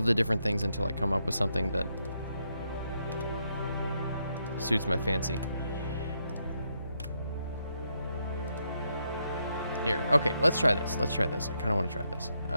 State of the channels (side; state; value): both; inverted; correlation -0.79